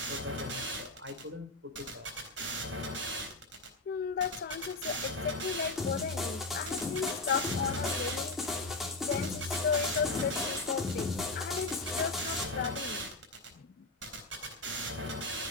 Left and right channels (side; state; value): right; quieter; 3.2 dB